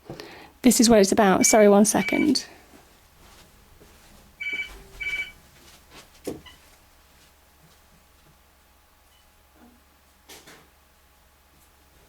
This is what it's about. Sorry, 1 second.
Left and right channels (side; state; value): both; identical; correlation 1.00